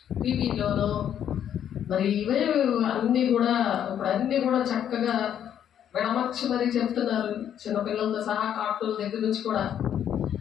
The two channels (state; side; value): quieter; right; 9.7 dB